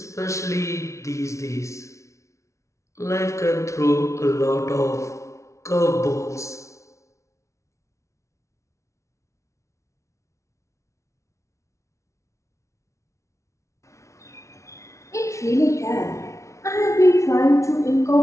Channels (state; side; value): late; right; 0.14 ms